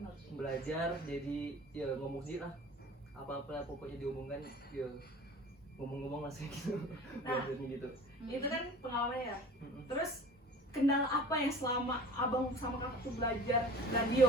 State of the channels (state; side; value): normal; both; correlation 0.42